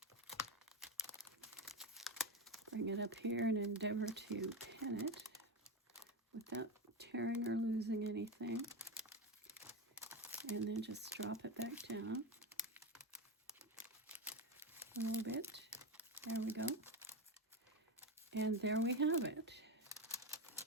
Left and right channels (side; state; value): both; normal; correlation 0.17